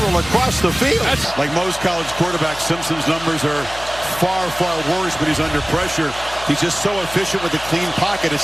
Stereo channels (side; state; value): left; noise; hum, 16 dB below the sound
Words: across the field. Like most college quarterbacks, Simpson's numbers are far worse, but he's under pressure. He's just so efficient with a clean pocket.